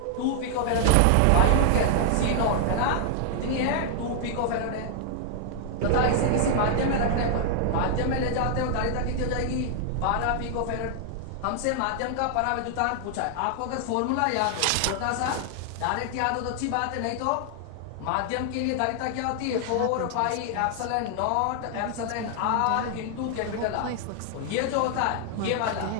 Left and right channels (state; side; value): different; both; correlation 0.00